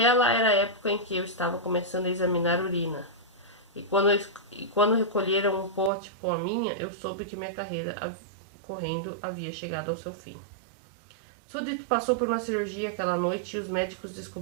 era a época em que eu estava começando a examinar urina. E quando recolheram um pote com a minha, eu soube que minha carreira correndo havia chegado ao seu fim. Sudit passou por uma cirurgia aquela noite e os médicos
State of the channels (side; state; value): left; drops out; at 5.9 s